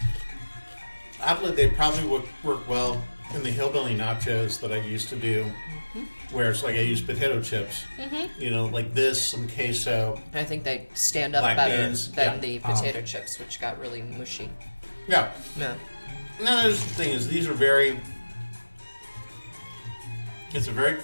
oddly, they probably would work well in the hillbilly nachos that I used to do, where it's like I use potato chips, like this, some queso. I think they stand up black better beans. than the potato chips, which got really mushy. Yeah. Yeah. No, the thing is, these are it's a very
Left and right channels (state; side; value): inverted; both; correlation -1.00